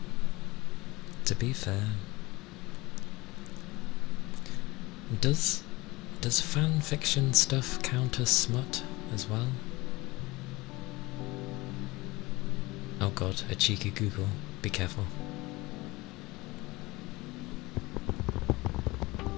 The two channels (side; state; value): right; quieter; 21.8 dB